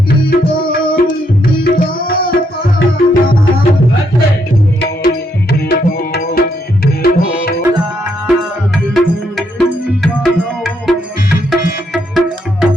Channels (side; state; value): both; normal; correlation 0.75